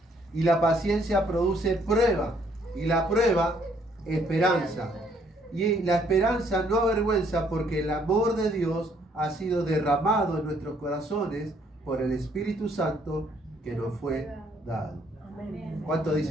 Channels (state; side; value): normal; both; correlation 0.66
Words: y la paciencia produce prueba, y la prueba esperanza. Y la esperanza no avergüenza, porque el amor de Dios ha sido derramado en nuestros corazones por el Espíritu Santo que nos fue dado. ¿Cuántos